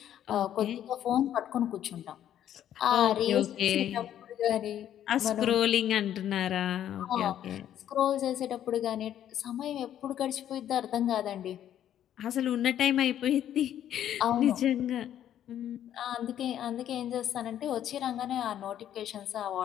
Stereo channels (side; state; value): right; quieter; 10.9 dB